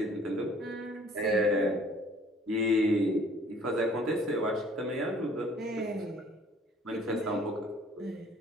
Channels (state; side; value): normal; both; correlation 0.55